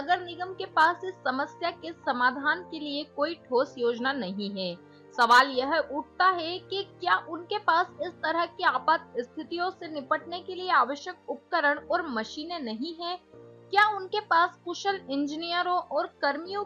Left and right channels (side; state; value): both; identical; correlation 1.00